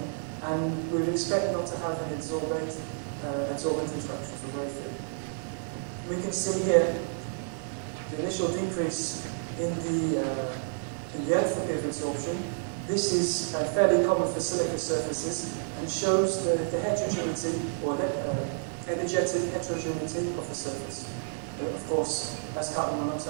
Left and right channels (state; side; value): silent; left; 58 dB below the other